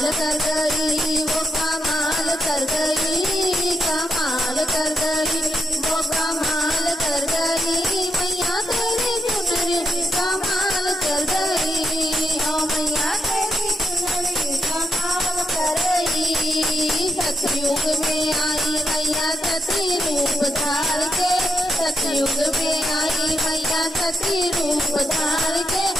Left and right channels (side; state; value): both; normal; correlation 0.82